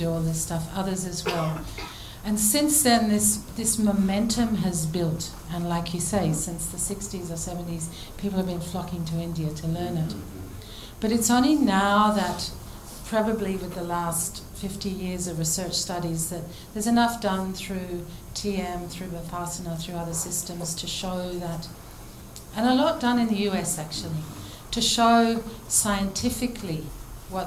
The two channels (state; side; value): identical; both; correlation 1.00